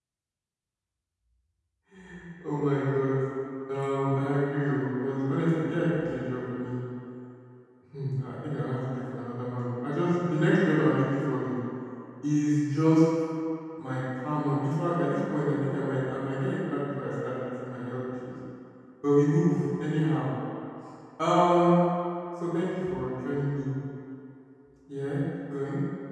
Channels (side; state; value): both; identical; correlation 1.00